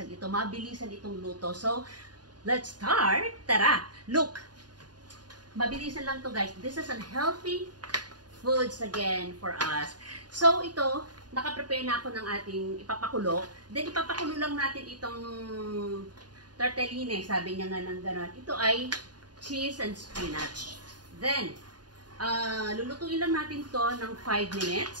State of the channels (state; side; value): late; left; 0.70 ms